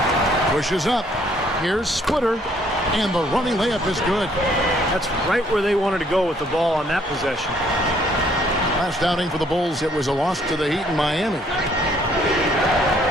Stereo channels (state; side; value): normal; both; correlation 0.64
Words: Pushes up. Here's Splitter, and the running layup is good. That's right where they wanted to go with the ball on that possession. Last outing for the Bulls, it was a loss to the Heat in Miami.